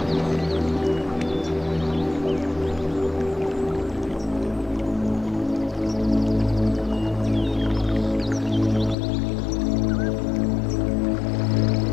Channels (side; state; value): right; drops out; at 9.0 s